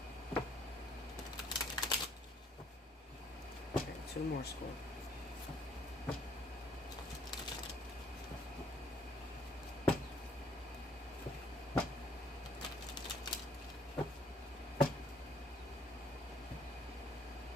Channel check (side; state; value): both; normal; correlation 0.64